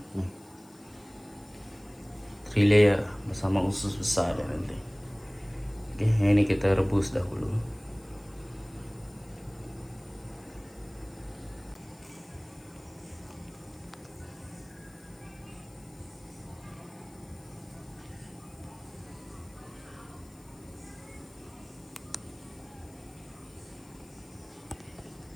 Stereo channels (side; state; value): left; noise; hiss, 26 dB below the sound